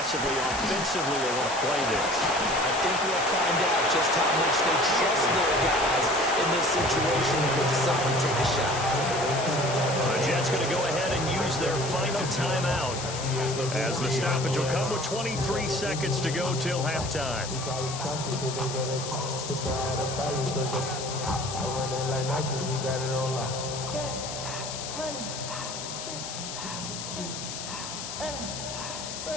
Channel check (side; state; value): left; noise; hiss, 7 dB below the sound